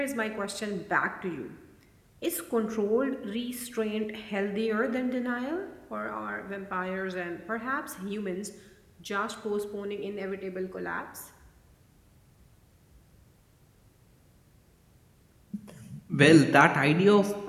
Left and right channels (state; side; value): identical; both; correlation 1.00